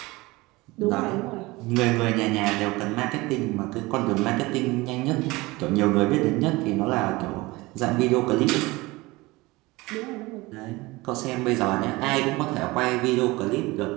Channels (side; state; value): left; quieter; 21.7 dB